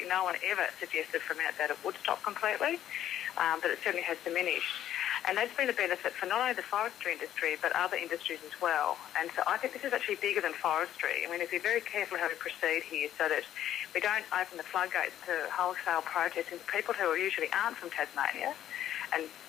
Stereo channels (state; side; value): quieter; right; 11.5 dB